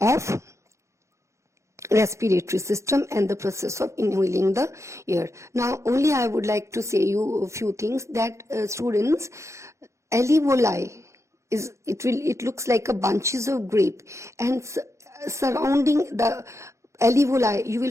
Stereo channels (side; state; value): left; late; 0.14 ms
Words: respiratory system and the process of inhaling the air. Now only I would like to say you a few things that students, alveoli is, it looks like a bunches of grape, and surrounding the alveoli you will